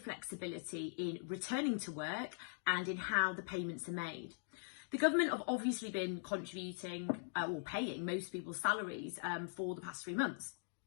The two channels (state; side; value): silent; right; digital silence